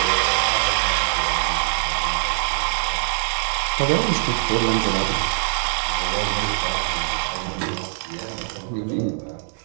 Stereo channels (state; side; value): silent; left; 64 dB below the other